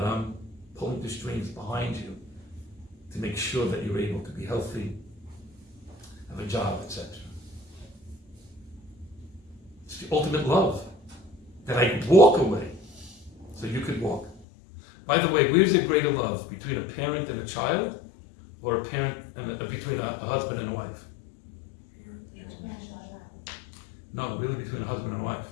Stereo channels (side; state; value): right; drops out; at 14.5 s